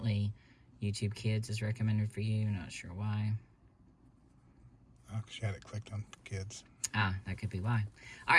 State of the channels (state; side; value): identical; both; correlation 1.00